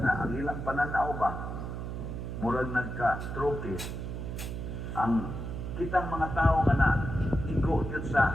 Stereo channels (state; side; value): noise; right; hum, 5 dB below the sound